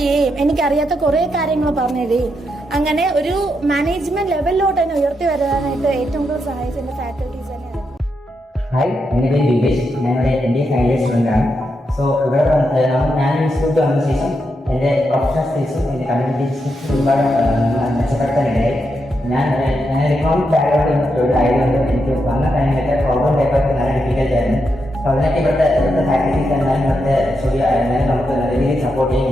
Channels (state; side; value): normal; both; correlation 0.83